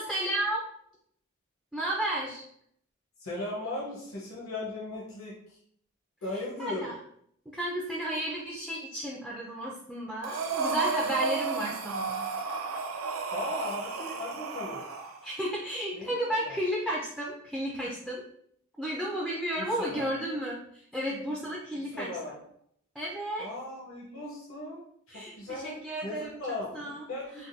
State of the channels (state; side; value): normal; both; correlation 0.22